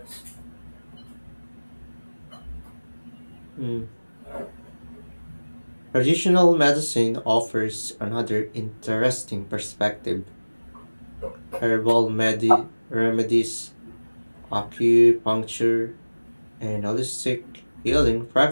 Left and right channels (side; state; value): both; inverted; correlation -1.00